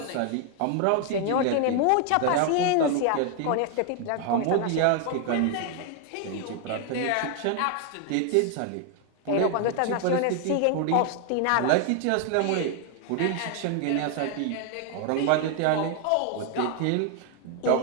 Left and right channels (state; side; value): different; both; correlation 0.00